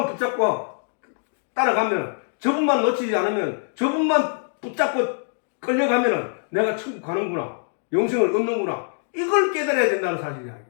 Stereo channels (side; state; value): right; silent; digital silence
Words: 붙잡고 따라가면 저분만 놓치지 않으면 저분만 붙잡고 끌려가면 내가 천국 가는구나. 영생을 얻는구나. 이걸 깨달아야 된다는 사실이야.